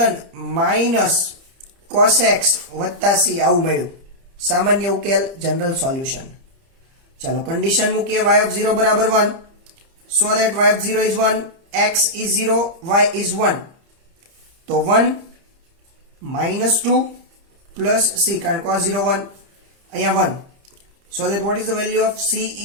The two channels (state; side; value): late; left; 30 ms